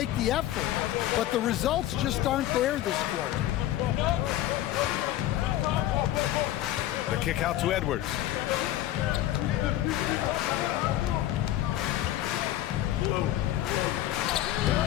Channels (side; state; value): right; quieter; 13.6 dB